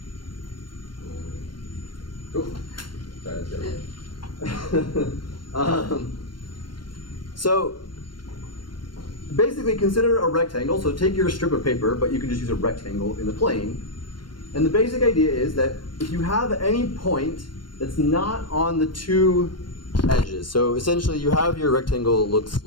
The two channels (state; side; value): late; right; 0.72 ms